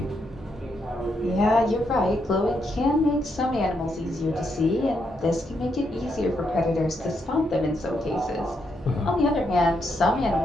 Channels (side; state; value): both; normal; correlation 0.79